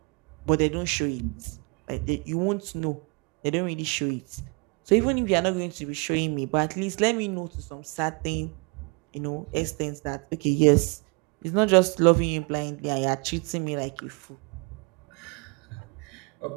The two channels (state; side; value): quieter; left; 31.5 dB